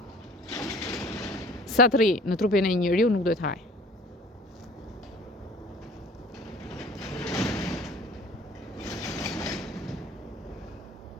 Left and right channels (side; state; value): both; normal; correlation 0.48